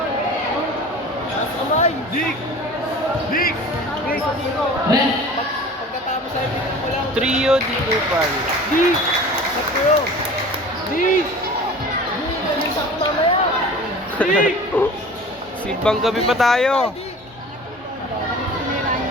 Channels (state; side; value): normal; both; correlation 0.41